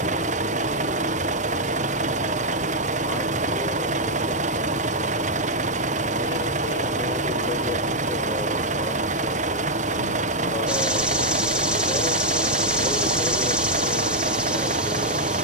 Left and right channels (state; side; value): normal; both; correlation -0.03